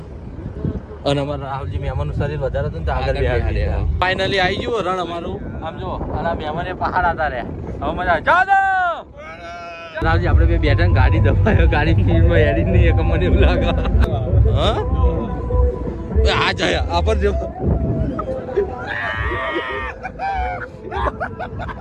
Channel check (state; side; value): identical; both; correlation 1.00